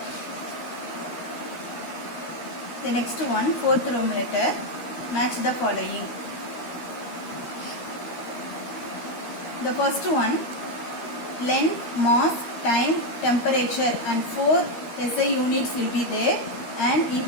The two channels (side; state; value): right; late; 13 ms